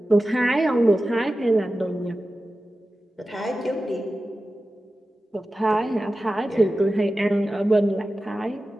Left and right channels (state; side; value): normal; both; correlation 0.94